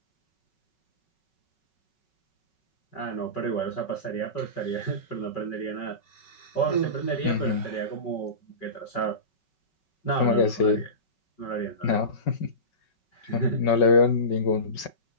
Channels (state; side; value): late; right; 5.3 ms